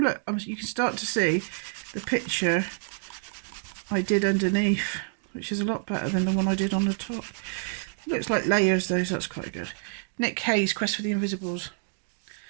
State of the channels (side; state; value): left; silent; digital silence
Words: you can start to see the picture I did underneath, which is a lot better than the one I did on the top. Looks like layers though, so that's quite good. Nick Hayes, Quest for the Invisibles.